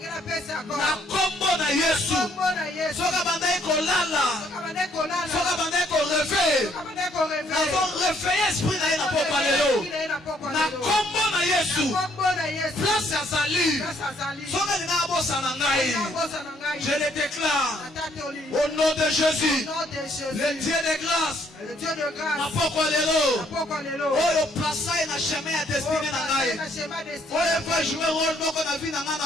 na kombo na Yesu soka bandai kolala soka bandai ko rêver avons réveillé esprit na ina poko lelo na kombo na Yesu place ya sali soka lina abosa na ngai je le déclare au nom de Jésus le Dieu de grâce na poko lelo oyo place na chemin ya destinée na ngai oyo va jouer rôle moko na vie na nga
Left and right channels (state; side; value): normal; both; correlation 0.67